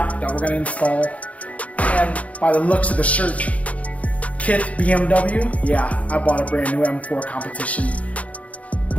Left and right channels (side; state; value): right; late; 0.067 ms